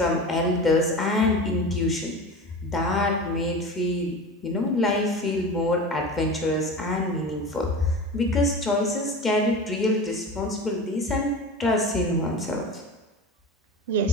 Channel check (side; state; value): both; normal; correlation 0.31